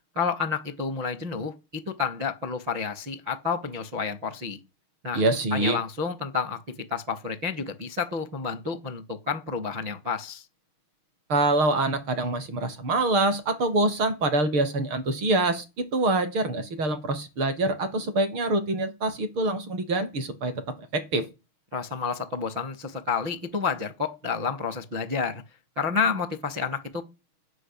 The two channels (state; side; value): late; left; 6.4 ms